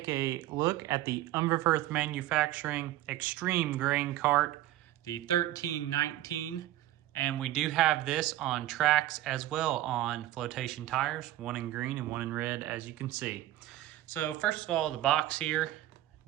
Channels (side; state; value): left; quieter; 14.6 dB